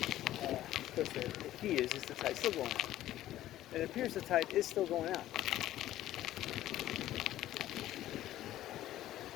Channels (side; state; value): right; quieter; 13.9 dB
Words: course the key is the tide's still going out. And it appears the tide is still going out.